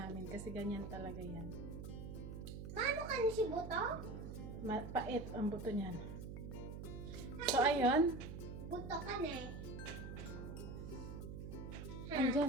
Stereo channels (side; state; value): right; noise; hum, 8 dB below the sound